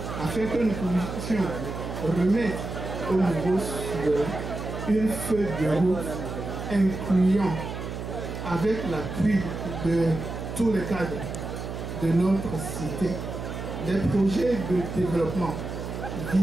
afin que nous puissions remettre au niveau souverain une feuille de route incluant, avec l'appui de tous les cadres de notre cité, des projets de développement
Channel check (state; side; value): noise; right; hum, 7 dB below the sound